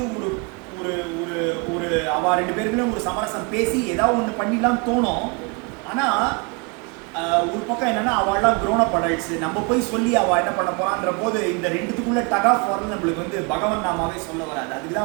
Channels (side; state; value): left; quieter; 31.6 dB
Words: ஒரு ஒரு ஒரு ஒரு அவள் 2 பேருக்குள்ள ஒரு சமரசம் பேசி ஏதாவது ஒன்று பண்ணிடலாம் தோணும். ஆனால் ஒரு பக்கம் என்னன்னா அவள்லாம் க்ரோனப் அடல்ட்ஸ், நம்ம போய் சொல்லி அவள் என்ன பண்ண போறான்ற போது இந்த ரெண்டுத்துக்குள்ள டக் ஆஃப் வரது நம்மளுக்கு வந்து பகவன் நாமாவே சொல்ல வராது. அதுக்கு